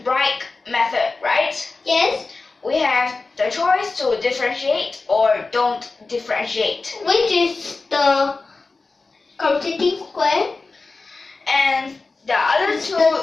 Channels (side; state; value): right; quieter; 3.8 dB